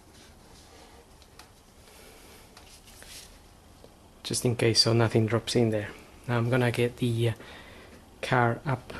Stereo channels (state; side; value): identical; both; correlation 1.00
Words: Just in case, so nothing drops in there. Now I'm gonna get the car up